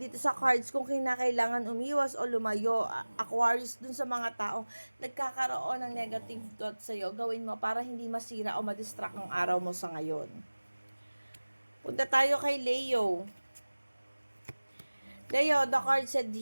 sa cards, kung kinakailangan umiwas o lumayo, Aquarius, dun sa mga taong nagkakaroon ng negative thoughts sa'yo, gawin mo para hindi masira o madistract ang araw mo sa ngayon. Punta tayo kay Leo. Leo, the card said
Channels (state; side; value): inverted; both; correlation -1.00